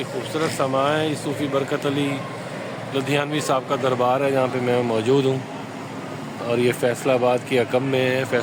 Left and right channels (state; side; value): identical; both; correlation 1.00